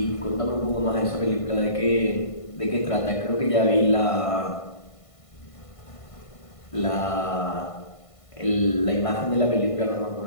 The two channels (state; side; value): late; right; 1.5 ms